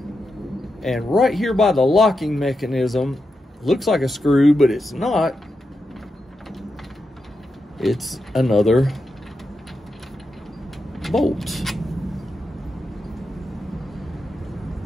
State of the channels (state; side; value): normal; both; correlation 0.87